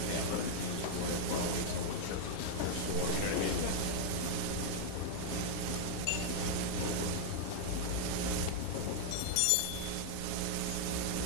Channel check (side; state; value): both; different; correlation -0.01